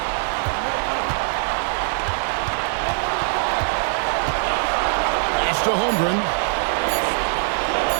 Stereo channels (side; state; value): left; silent; 64 dB below the other